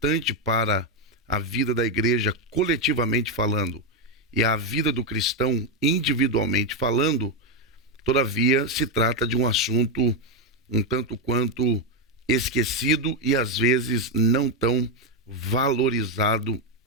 para a vida da igreja coletivamente falando e a vida do cristão individualmente falando, todavia se trata de um assunto um tanto quanto esquecido e às vezes não tão valorizado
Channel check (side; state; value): both; normal; correlation 0.05